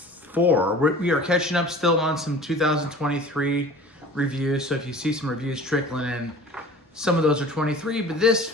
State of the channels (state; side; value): normal; both; correlation 0.43